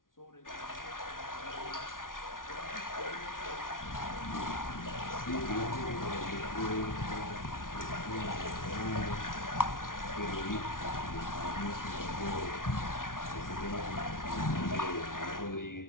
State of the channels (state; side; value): late; right; 0.89 ms